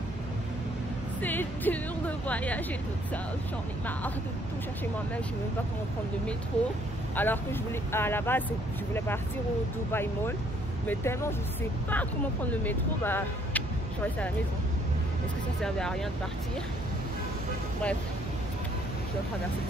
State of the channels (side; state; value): both; normal; correlation 0.65